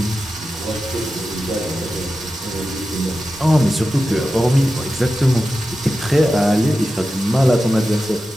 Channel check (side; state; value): both; normal; correlation 0.92